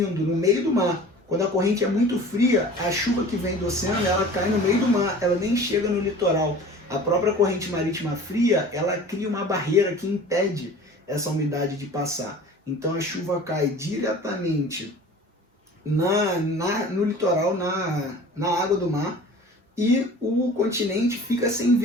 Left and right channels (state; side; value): normal; both; correlation 0.42